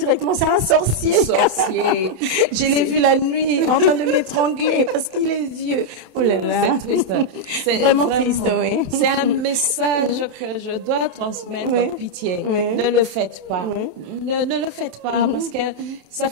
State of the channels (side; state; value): left; late; 27 ms